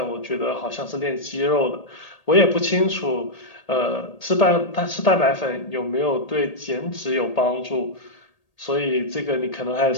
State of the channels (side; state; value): right; late; 1.8 ms